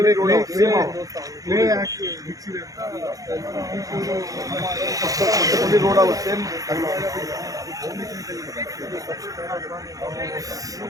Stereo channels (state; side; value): late; left; 0.17 ms